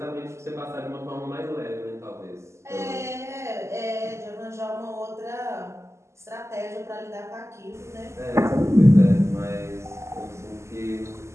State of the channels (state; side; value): late; left; 0.13 ms